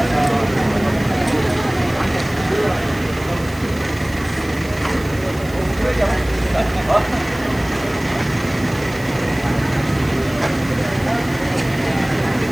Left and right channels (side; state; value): right; noise; hiss, 20 dB below the sound